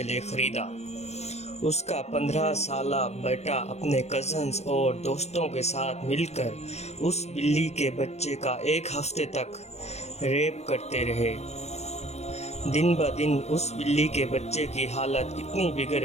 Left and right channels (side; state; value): right; late; 0.31 ms